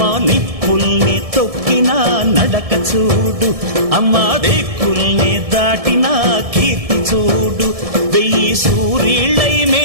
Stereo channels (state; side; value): late; left; 1.7 ms